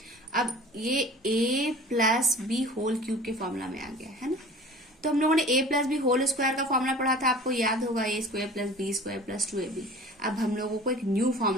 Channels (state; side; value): normal; both; correlation 0.43